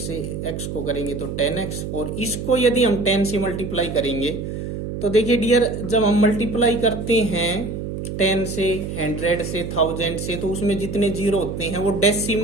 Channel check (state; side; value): noise; right; hum, 6 dB below the sound